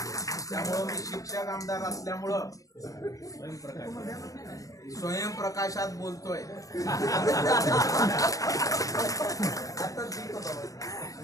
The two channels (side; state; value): right; late; 0.17 ms